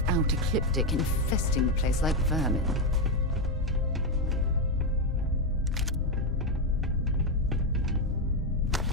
Ecliptic infesting the place like vermin.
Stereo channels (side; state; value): both; normal; correlation 0.06